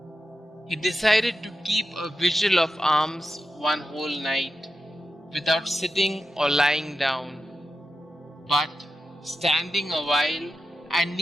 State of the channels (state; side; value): normal; both; correlation 0.90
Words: He decided to keep a vigil of alms one whole night, without sitting or lying down, but standing a while and